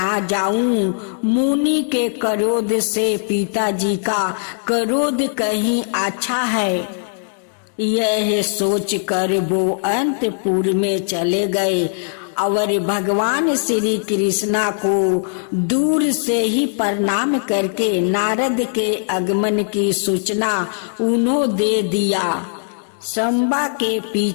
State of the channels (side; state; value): right; silent; digital silence